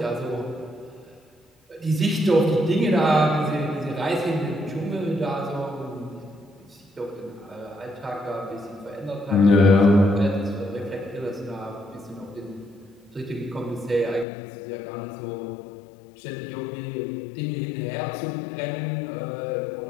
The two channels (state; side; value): drops out; right; at 14.2 s